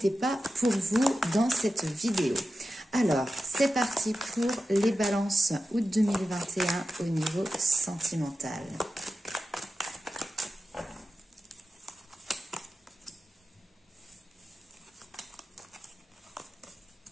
pas pour vous dans cette vidéo. Alors, c'est parti pour les balances août 2021 au niveau sentimental.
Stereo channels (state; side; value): normal; both; correlation 0.92